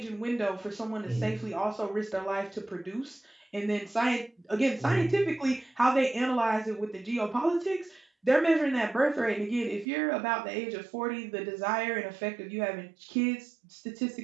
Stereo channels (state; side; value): drops out; left; at 9.9 s